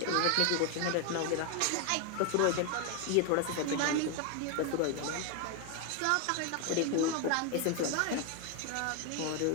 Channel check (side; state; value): both; different; correlation 0.01